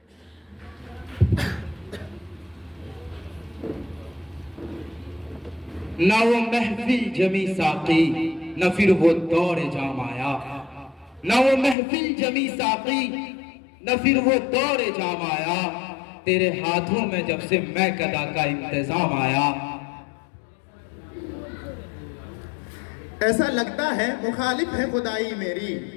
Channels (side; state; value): right; drops out; at 11.8 s